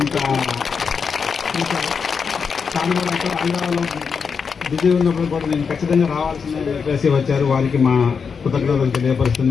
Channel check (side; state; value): right; quieter; 5.9 dB